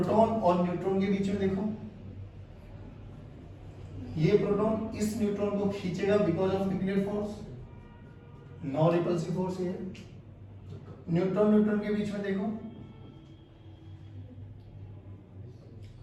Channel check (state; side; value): identical; both; correlation 1.00